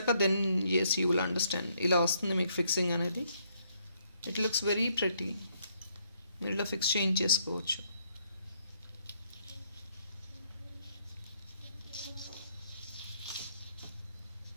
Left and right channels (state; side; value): inverted; both; correlation -0.71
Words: then yes you will understand. ఇలా వస్తుంది మీకు ఫిక్సింగ్ అనేది. It looks very pretty. మీరు ఇలా ఫిక్స్ చేయించేసుకోవచ్చు.